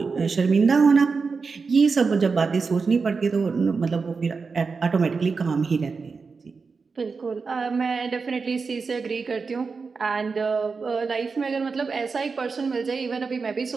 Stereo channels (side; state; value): left; quieter; 4.8 dB